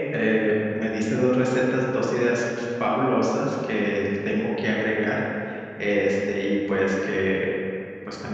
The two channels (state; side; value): identical; both; correlation 1.00